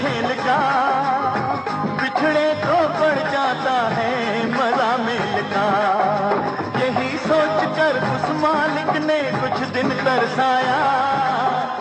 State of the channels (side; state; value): both; identical; correlation 1.00